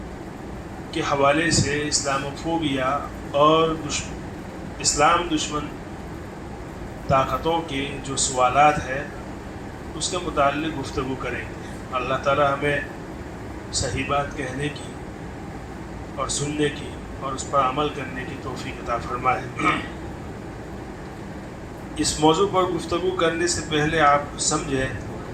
کے حوالے سے اسلاموفوبیا اور اسلام دشمن طاقتوں کے جو سوالات ہیں اس کے متعلق گفتگو کریں گے۔ اللہ تعالی ہمیں صحیح بات کہنے کی اور سننے کی اور اس پر عمل کرنے کی توفیق عطا فرمائے۔ اس موضوع پر گفتگو کرنے سے پہلے آپ سمجھیں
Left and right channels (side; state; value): both; identical; correlation 1.00